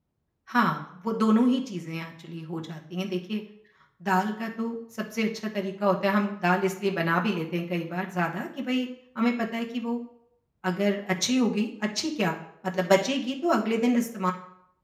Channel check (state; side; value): identical; both; correlation 1.00